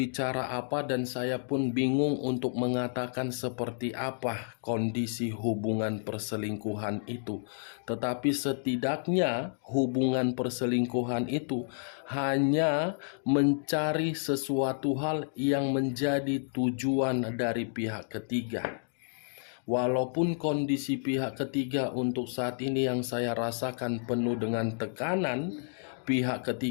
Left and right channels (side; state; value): right; silent; digital silence